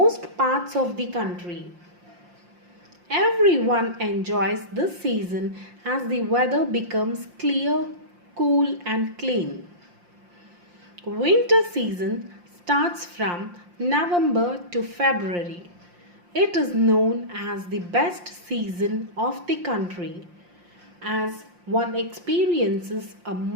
parts of the country. Everyone enjoys this season as the weather becomes clear, cool, and clean. Winter season starts from November to February. It is known as the best season of the country as one experiences a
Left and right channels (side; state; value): left; late; 5.7 ms